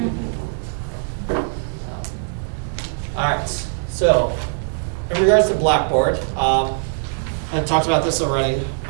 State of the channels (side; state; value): left; silent; digital silence